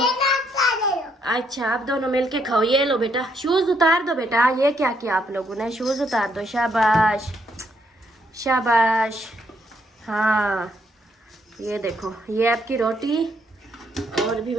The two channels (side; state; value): both; normal; correlation 0.73